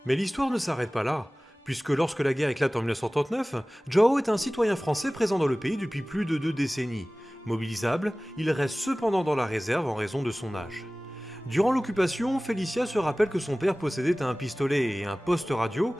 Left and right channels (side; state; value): both; normal; correlation 0.98